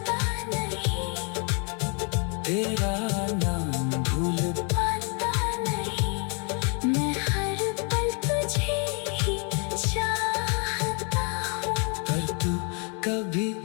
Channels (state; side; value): quieter; right; 37.1 dB